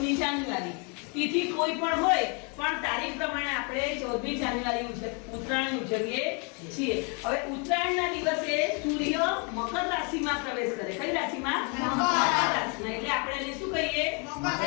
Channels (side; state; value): right; quieter; 35.1 dB